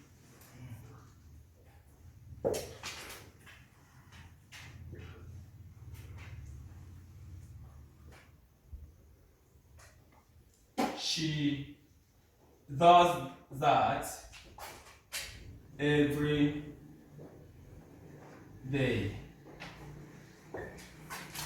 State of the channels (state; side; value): identical; both; correlation 1.00